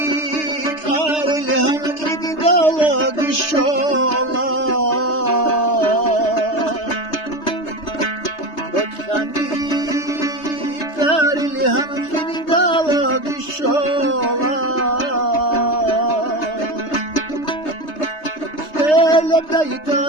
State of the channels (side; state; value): right; late; 3.3 ms